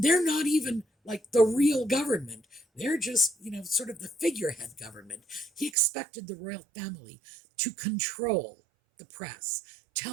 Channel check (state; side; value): drops out; left; at 5.8 s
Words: they're not even like the real government, they're just, sort of the figurehead government. He expected the royal family to control the press,